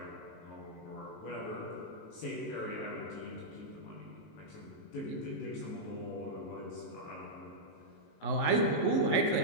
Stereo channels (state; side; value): late; right; 19 ms